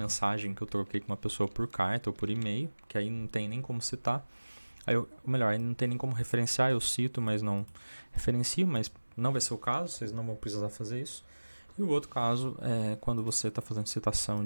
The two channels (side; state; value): both; inverted; correlation -1.00